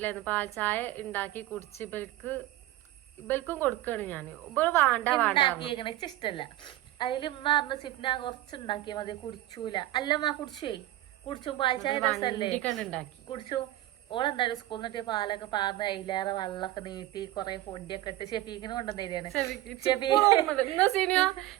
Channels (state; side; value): quieter; left; 15.6 dB